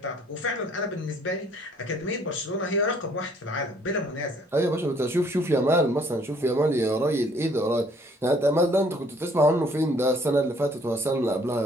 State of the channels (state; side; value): normal; both; correlation 0.61